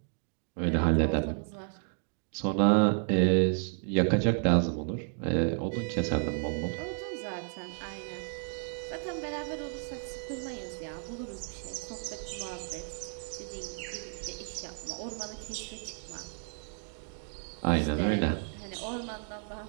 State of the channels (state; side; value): silent; left; 56 dB below the other